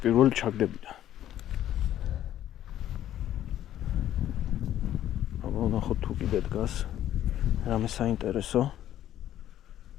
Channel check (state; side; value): quieter; right; 12.0 dB